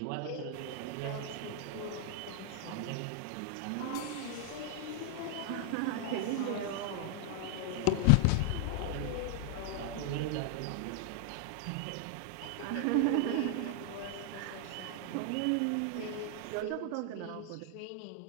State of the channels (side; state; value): both; different; correlation 0.00